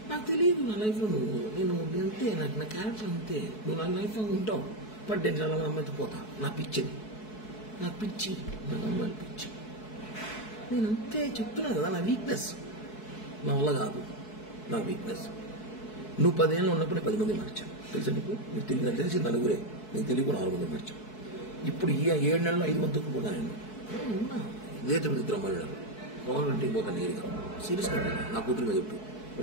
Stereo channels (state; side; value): late; right; 4.6 ms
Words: నాకు తెలియదు నా లైఫ్లో నేను అంతే. నాకు నా క్యారెక్టర్ అంతే. నువ్వు నా లైఫ్లో ఉంటావు. బట్ నేను చాలా అమ్మాయితో పోతా. నా పిచ్చిది, నాకు పిచ్చి, నాకు అమ్మాయిలు పిచ్చి. నేను అంతే చెప్తున్నాను కదా. నా వీక్నెస్ నా వల్ల కాదు. నా వీక్నెస్. నువ్వు 10 ఏళ్ళు ఉన్నప్పుడే 10 మంది మార్చాను. తెలుసా నీకు? నీకు తెలియదు. తెలిసి నలుగురే, నీకు తెలియకుండా 4 మంది మార్చాను. ఇప్పుడు ఈ 7 నెలల్లో 5 మందికి పోతా నేను. ఉన్నా ఇదే తిరుపతి ఇద్దరు అమ్మాయిలు గవర్నమెంట్కి పోతాను నేరుగా. సీరియస్గా నా కూతురు మీద చెప్పు.